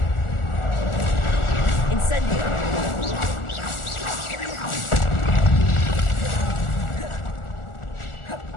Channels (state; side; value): late; right; 1.4 ms